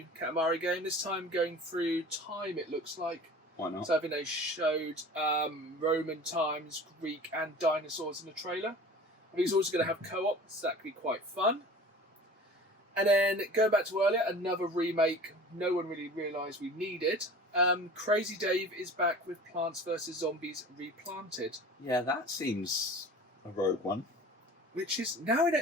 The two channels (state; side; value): normal; both; correlation 0.41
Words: Katamari game. This time going through time, it looks like. Why not? So I think they showed Roman times, Greek and dinosaurs in the trailer. I think it's also going to have co-op, so that could be quite fun. And then going back to earlier, another remake no one really realised we needed. Crazy Dave is back with Plants vs. Zombies Replanted. Yeah, that seems a rogue one. Which is now